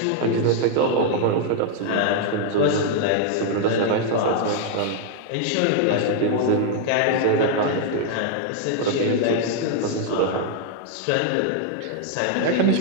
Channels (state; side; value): different; both; correlation 0.00